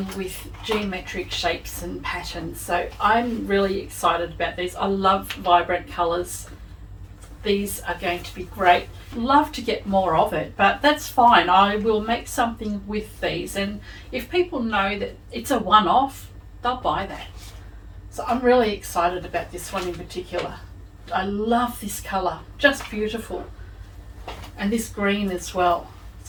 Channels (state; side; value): identical; both; correlation 1.00